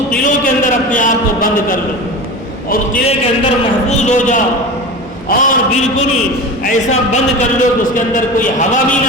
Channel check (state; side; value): normal; both; correlation 0.30